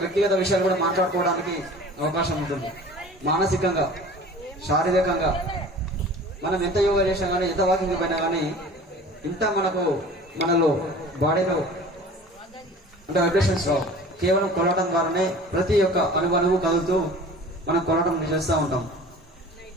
వ్యక్తిగత విషయాలు కూడా మాట్లాడుకోవడానికి అవకాశం ఉంటుంది. మానసికంగా, శారీరకంగా మనం ఎంత యోగా చేసినా కానీ, ఎంత వాకింగ్ పోయినా కానీ ఇంత మనకు మనలో బాడీలో అంటే వైబ్రేషన్స్ రావు. కేవలం కొలవటం ద్వారానే ప్రతి ఒక్క అణువు కదులుతూ మనం కొలవటం చేస్తూ ఉంటాం.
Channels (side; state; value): both; normal; correlation 0.43